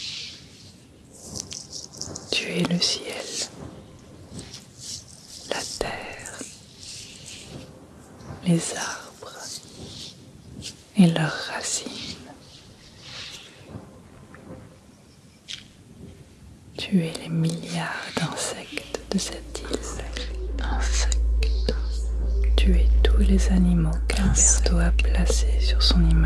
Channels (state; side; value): identical; both; correlation 1.00